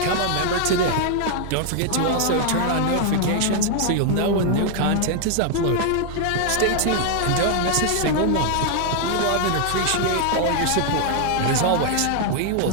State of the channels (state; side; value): different; both; correlation 0.00